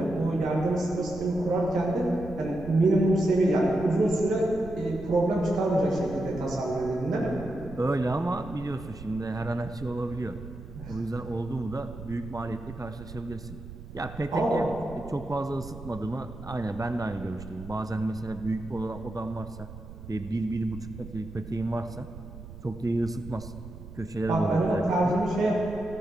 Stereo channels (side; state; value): right; noise; rumble, 13 dB below the sound